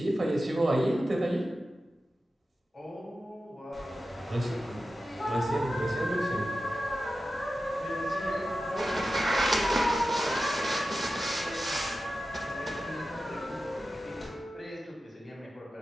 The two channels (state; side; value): normal; both; correlation 0.93